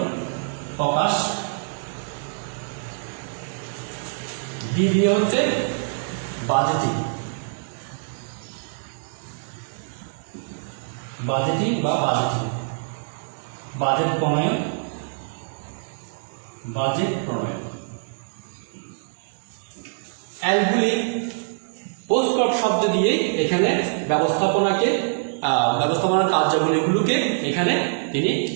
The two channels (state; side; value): silent; left; digital silence